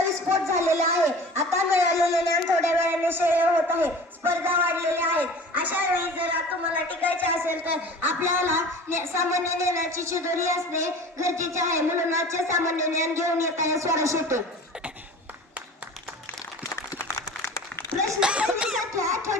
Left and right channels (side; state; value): both; normal; correlation 0.40